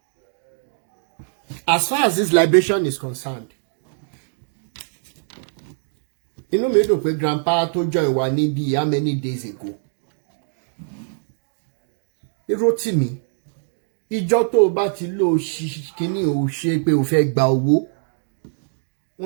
as far as this liberation is concerned, inú mi dùn pé grandpa tó join wa níbi how many days ago. Rotimi, ìjọ tó bá ti lò kíní ò ṣe pé ó fẹ́ gba owó.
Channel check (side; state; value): left; silent; digital silence